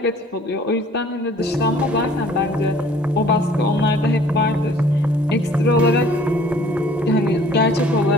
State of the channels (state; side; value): normal; both; correlation 0.54